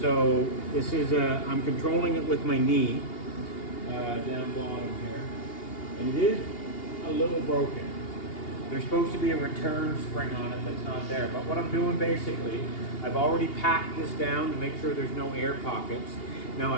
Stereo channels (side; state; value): right; late; 2.8 ms